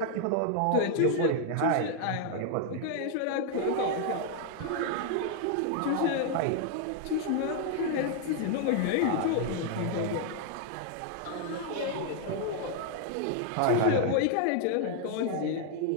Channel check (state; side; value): different; both; correlation 0.00